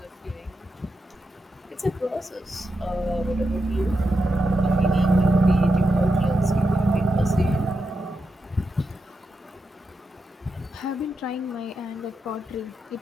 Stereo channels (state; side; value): normal; both; correlation 0.87